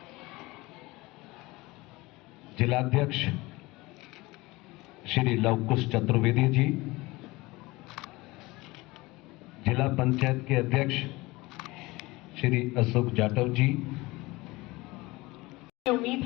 जिलाध्यक्ष श्री लवकुश चतुर्वेदी जी, जिला पंचायत के अध्यक्ष श्री अशोक जाटव जी। उम्मीद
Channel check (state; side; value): quieter; right; 21.6 dB